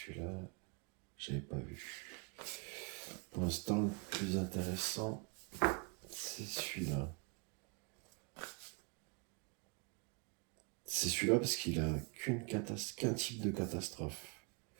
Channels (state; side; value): quieter; left; 32.6 dB